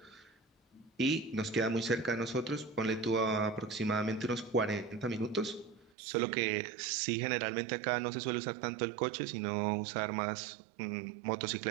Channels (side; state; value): left; drops out; at 5.9 s